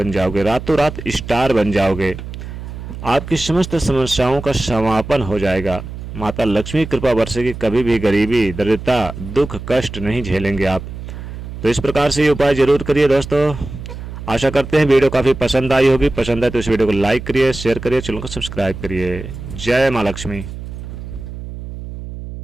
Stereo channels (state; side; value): noise; right; hum, 10 dB below the sound